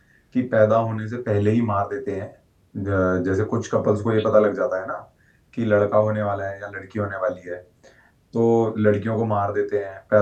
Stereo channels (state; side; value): identical; both; correlation 1.00